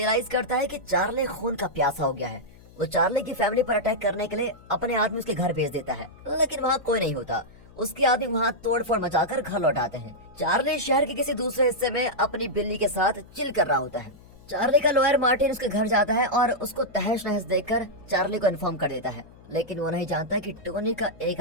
करता है कि चार्ली खून का प्यासा हो गया है। वो चार्ली की फैमिली पर अटैक करने के लिए अपने आदमी उसके घर भेज देता है, लेकिन वहाँ कोई नहीं होता। उसके आदमी वहाँ तोड़फोड़ मचाकर घर लौटाते हैं। चार्ली शहर के किसी दूसरे हिस्से में अपनी बिल्ली के साथ चिल कर रहा होता है। चार्ली का लॉयर मार्टिन उसके घर जाता है और उसको तहस नहस देखकर चार्ली को इन्फॉर्म कर देता है, लेकिन वो नहीं जानता कि टोनी का एक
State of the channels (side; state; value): left; noise; hum, 23 dB below the sound